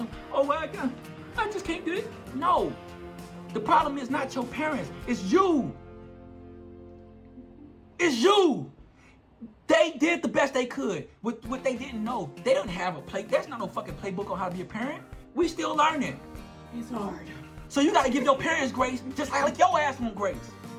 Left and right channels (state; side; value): identical; both; correlation 1.00